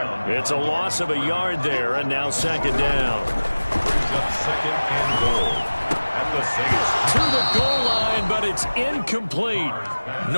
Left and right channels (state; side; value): inverted; both; correlation -1.00